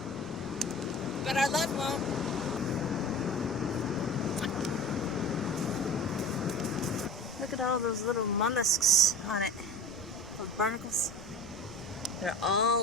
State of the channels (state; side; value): noise; right; rumble, 18 dB below the sound